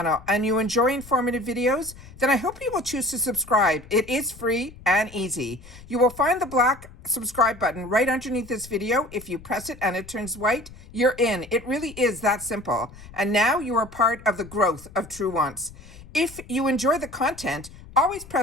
and you enjoy informative videos, then I hope you will choose to subscribe. It is free and easy. You will find the black subscribe button right underneath this video. If you press it and it turns white, you're in. It really is that simple. And now you are part of the growth of Truewants. If you enjoy the content, always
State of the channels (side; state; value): left; noise; rumble, 19 dB below the sound